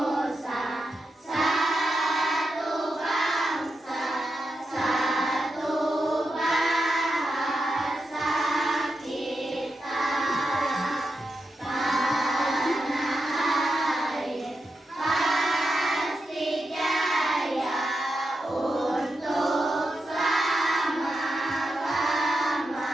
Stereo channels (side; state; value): both; normal; correlation 0.87